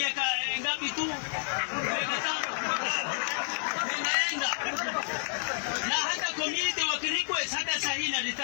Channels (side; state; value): right; silent; 58 dB below the other